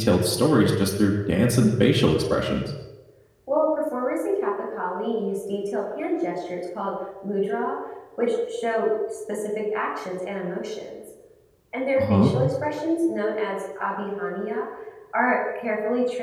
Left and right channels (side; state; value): both; identical; correlation 1.00